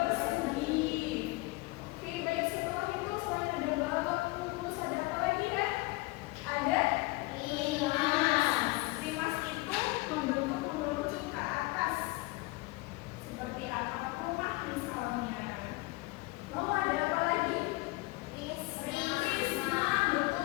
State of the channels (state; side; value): quieter; right; 23.1 dB